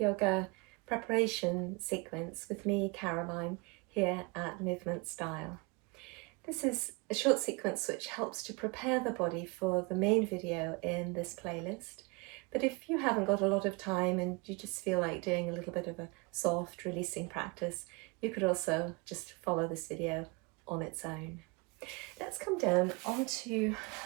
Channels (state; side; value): quieter; left; 27.9 dB